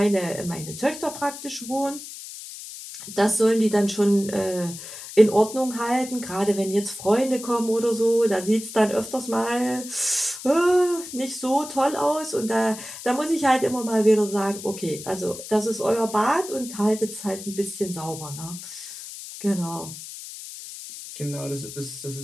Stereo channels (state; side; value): noise; left; hiss, 12 dB below the sound